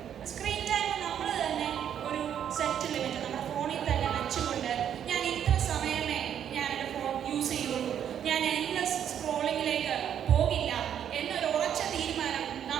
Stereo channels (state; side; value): quieter; left; 9.3 dB